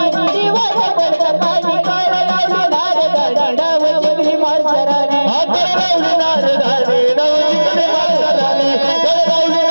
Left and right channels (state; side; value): inverted; both; correlation -1.00